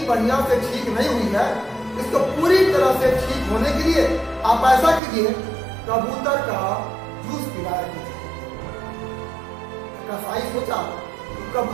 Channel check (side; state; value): left; drops out; at 5.0 s